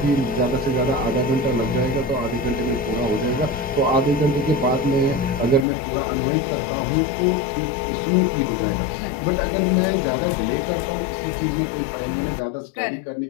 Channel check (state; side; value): drops out; right; at 5.7 s